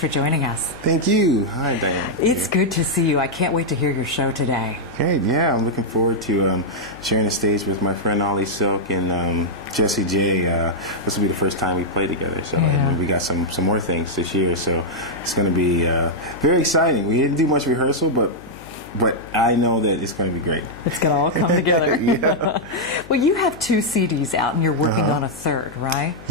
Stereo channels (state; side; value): noise; left; hum, 18 dB below the sound